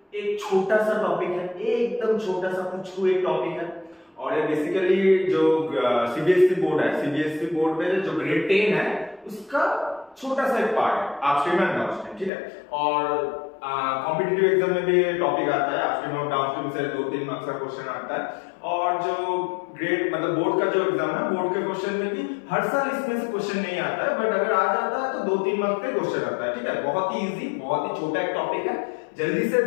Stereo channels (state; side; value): drops out; right; at 12.3 s